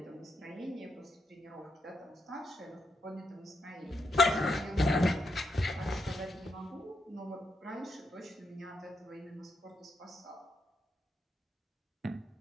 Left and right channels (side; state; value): both; normal; correlation 0.81